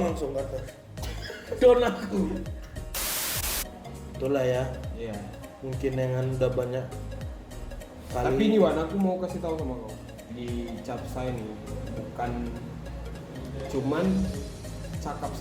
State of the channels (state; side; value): identical; both; correlation 1.00